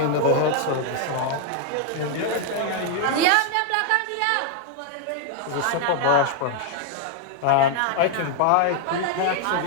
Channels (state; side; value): different; both; correlation 0.00